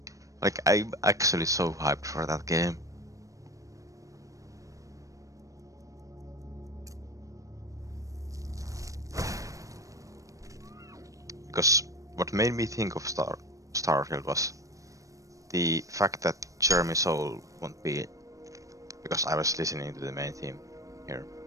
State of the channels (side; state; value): left; late; 0.16 ms